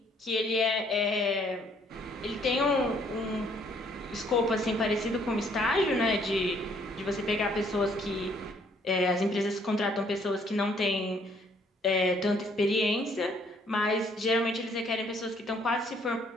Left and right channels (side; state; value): both; normal; correlation 0.64